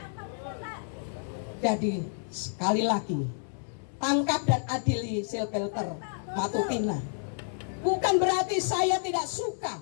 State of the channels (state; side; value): silent; right; digital silence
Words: Jadi sekali lagi, tangkap dan adili Silvelter Matutina. Bukan berarti saya tidak suka